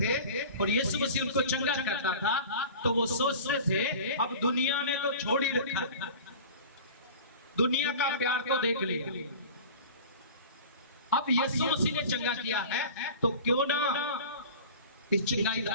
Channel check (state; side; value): inverted; both; correlation -0.38